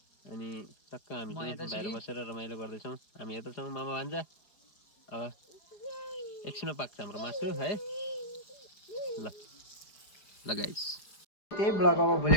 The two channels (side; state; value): right; late; 4.9 ms